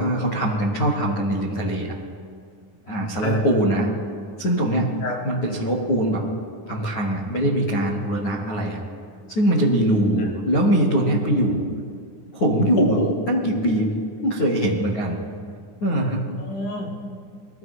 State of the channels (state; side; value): late; right; 9.8 ms